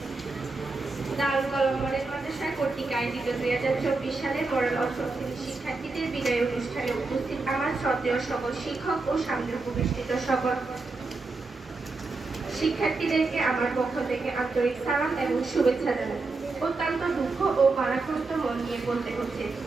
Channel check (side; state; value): left; quieter; 3.7 dB